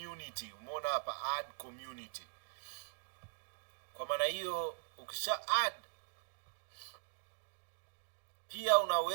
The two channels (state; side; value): silent; left; digital silence